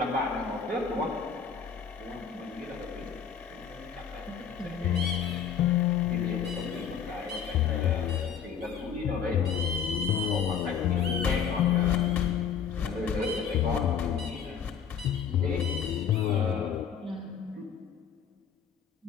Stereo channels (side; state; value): right; quieter; 7.3 dB